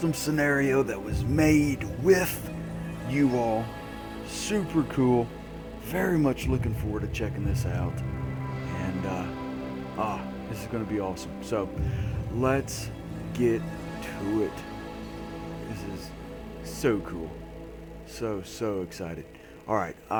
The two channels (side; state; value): both; identical; correlation 1.00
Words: scenario that was made with you all. Super cool. Very much looking forward to checking this out. And, this is going to be awesome. So, let's get to it. This is so cool. So excited. Alright,